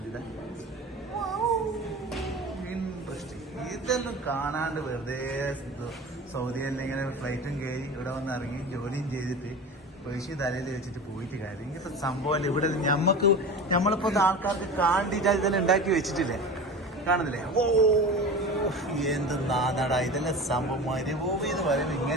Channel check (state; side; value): normal; both; correlation 0.32